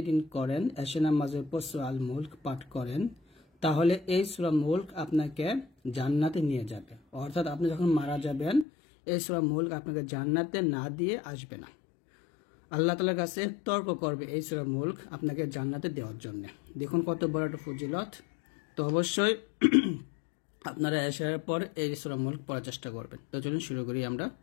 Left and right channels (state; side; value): drops out; right; at 8.7 s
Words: করেন, এশার নামাজের পর সূরা আল মুলক পাঠ করেন, তাহলে এই সূরা মুলক আপনাকে জান্নাতে নিয়ে যাবে। অর্থাৎ আপনি যখন মারা যাবেন, এই সূরা মুলক আপনাকে জান্নাতে না দিয়ে আসবে না। আল্লাহ তাআলার কাছে তর্ক করবে এই সূরা মুলক আপনাকে জান্নাতে দেওয়ার জন্য। দেখুন কত বড় একটা ফজিলত। তো অবশ্যই আপনারা এশারের পর এই সূরা মুলক পড়ার চেষ্টা করবেন। তো চলুন শুরু করি আমরা।